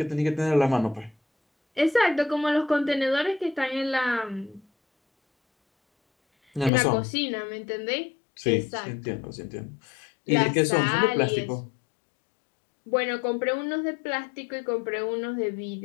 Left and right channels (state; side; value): drops out; right; at 6.7 s